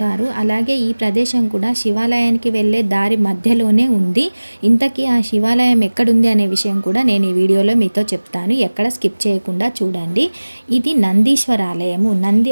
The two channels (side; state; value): both; inverted; correlation -1.00